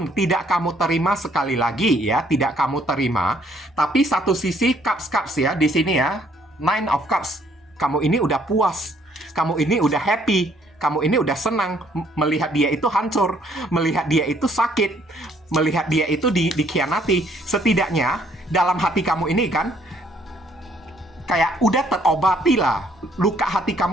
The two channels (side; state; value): both; normal; correlation 0.65